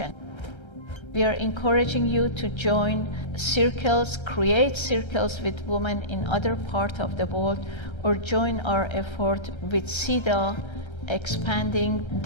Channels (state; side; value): late; right; 1.3 ms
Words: We are encouraging you to join circles, create circles with women in other parts of the world, or join our effort with CEDAW, expanding